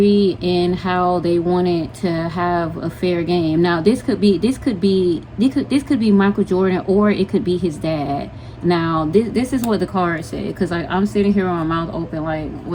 and how they wanted to have a fair game. Now, this could be Michael Jordan, or it could be his dad. Now, this is what the card said, because I'm sitting here with my mouth open like,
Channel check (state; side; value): identical; both; correlation 1.00